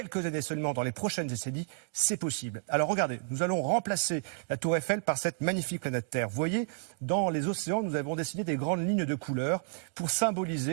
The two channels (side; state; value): left; silent; digital silence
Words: années seulement dans les prochaines décennies. C'est possible. Alors, regardez, nous allons remplacer la tour Eiffel par cette magnifique planète Terre. Vous voyez, dans les océans, nous avons dessiné des grandes lignes de couleurs pour